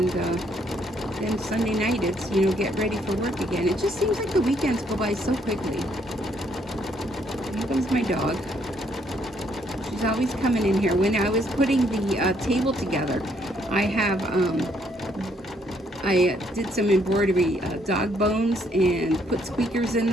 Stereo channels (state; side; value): normal; both; correlation 0.69